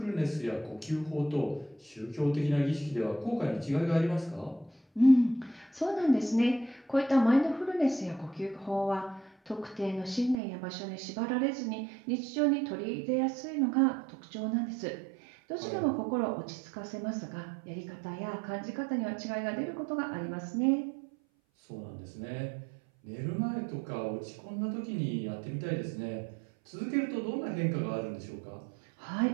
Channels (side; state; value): left; drops out; at 10.4 s